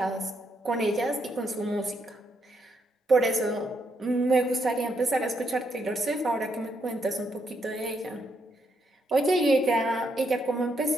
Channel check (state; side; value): normal; both; correlation 0.77